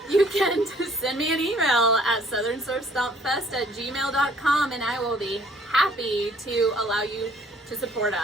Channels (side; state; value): both; normal; correlation 0.60